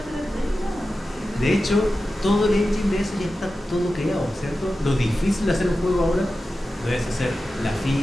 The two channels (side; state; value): both; normal; correlation 0.93